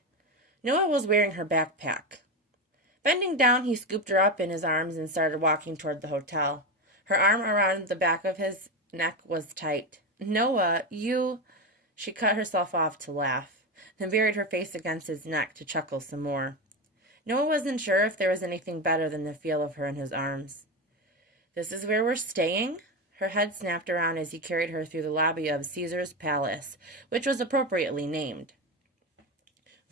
Noah was wearing her backpack. Bending down, he scooped her up in his arms and started walking toward the hotel. Her arm around the back of his neck was tight. Noah, you... She cut herself off to laugh, then buried her face against his neck to chuckle some more. Noah wasn't sure if there was anything better than the feel of her in his arms. This is where we're staying? Her head snapped around as he carried her through the lobby of Caesar's Palace, which was appropriately named.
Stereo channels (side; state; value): both; normal; correlation 0.16